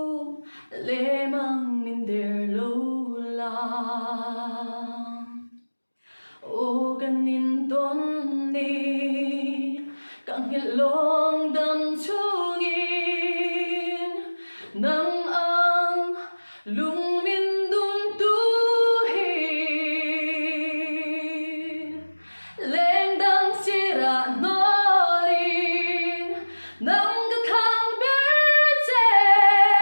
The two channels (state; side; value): inverted; both; correlation -1.00